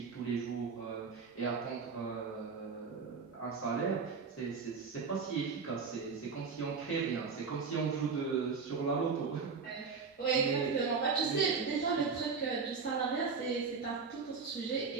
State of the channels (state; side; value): quieter; left; 5.2 dB